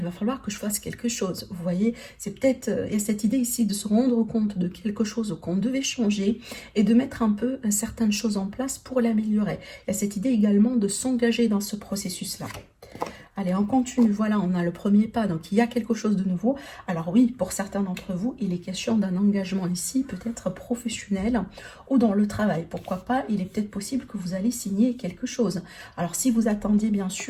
va falloir que je fasse quelque chose, vous voyez, c'est peut-être, il y a cette idée ici de se rendre compte de quelque chose qu'on devait changer, et de mettre un peu certaines choses en place pour l'améliorer. Il y a cette idée également de s'engager dans ce processus-là. Allez, on continue. Voilà, on a le premier pas. Donc, il y a quelque chose de nouveau. Alors oui, pour certains d'entre vous, il est question d'un engagement ici, peut-être professionnel ou dans le travail. Pourquoi pas, il est peut-être possible que vous allez signer quelque chose. Alors, si vous attendiez bien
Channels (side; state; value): both; identical; correlation 1.00